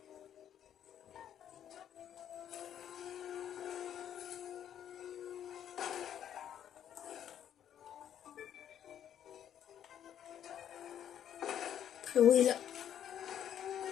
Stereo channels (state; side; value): quieter; right; 10.0 dB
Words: Frérot est là.